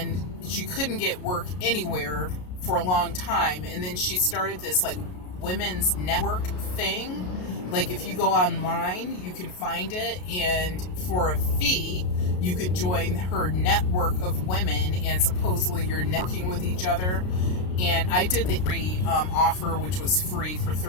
she couldn't get work anywhere for a long time. And then she started this like women's network thing. Like if you go online, you can find it, and for a fee, you could join her network of women, and supposedly you're networking with each other. And I did the free offer, which was free for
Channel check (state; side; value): late; right; 33 ms